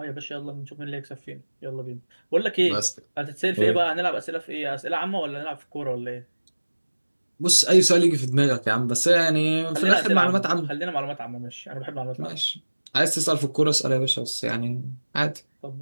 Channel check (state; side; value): inverted; both; correlation -1.00